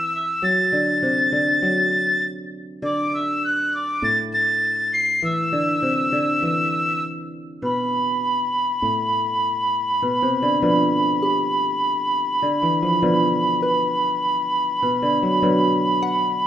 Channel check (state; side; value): normal; both; correlation 0.83